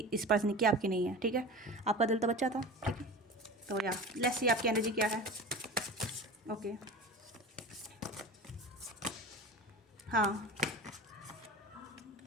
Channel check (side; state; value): both; normal; correlation 0.33